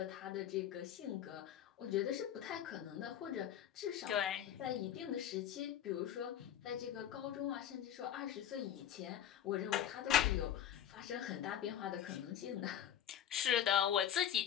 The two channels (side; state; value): right; quieter; 10.3 dB